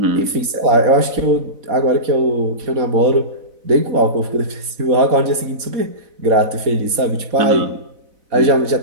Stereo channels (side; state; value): left; late; 4.0 ms